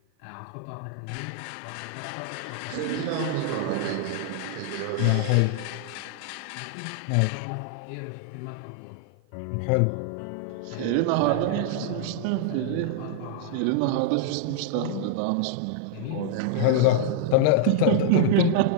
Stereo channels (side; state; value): both; different; correlation -0.01